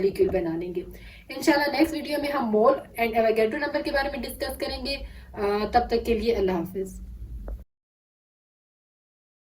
बना लेंगे। इंशाल्लाह नेक्स्ट वीडियो में हम मोल एंड एवोगैड्रो नंबर के बारे में डिस्कस करेंगे। तब तक के लिए अल्लाह हाफिज़।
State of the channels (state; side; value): identical; both; correlation 1.00